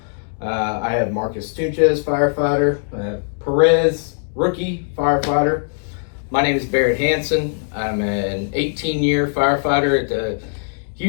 I have Marcus Tunches, firefighter. I have Perez, rookie firefighter. My name is Barrett Hansen. I'm an 18-year firefighter at the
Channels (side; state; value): right; silent; digital silence